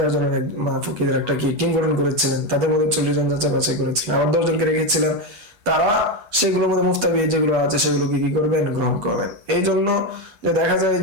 জনের ফকিদের একটা কি টিম গঠন করেছিলেন, তাদের মধ্যে 40 জন যাচাই বাছাই করেছিলেন, আবার 10 জনকে রেখেছিলেন, তারা সেগুলোর মধ্যে মুফতাবি যেগুলো আছে সেগুলোকে কি করবেন, গ্রহণ করবেন। এই জন্য যে দেখা যায়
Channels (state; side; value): late; left; 8.2 ms